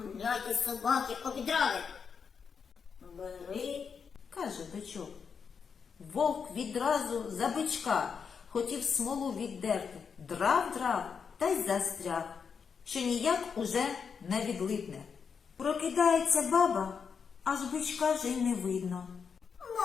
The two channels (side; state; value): right; quieter; 6.2 dB